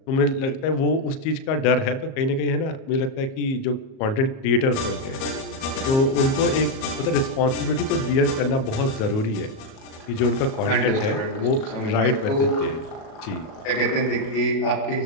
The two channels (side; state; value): right; late; 38 ms